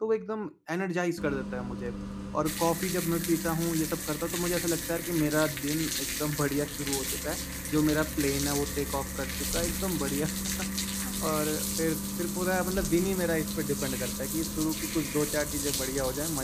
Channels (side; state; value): both; identical; correlation 1.00